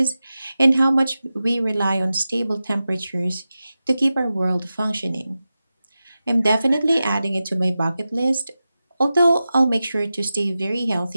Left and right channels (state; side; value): inverted; both; correlation -0.93